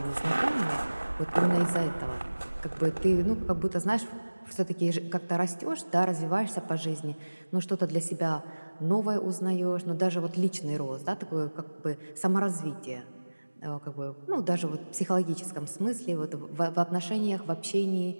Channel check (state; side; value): inverted; both; correlation -1.00